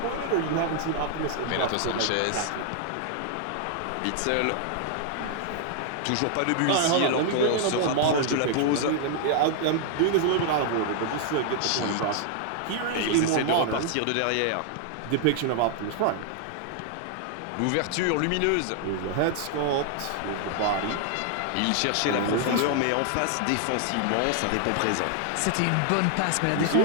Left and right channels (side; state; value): both; different; correlation 0.00